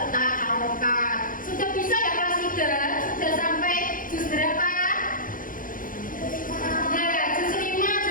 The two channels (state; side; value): late; right; 0.40 ms